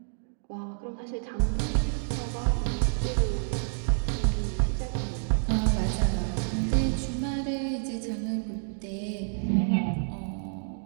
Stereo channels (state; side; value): silent; left; digital silence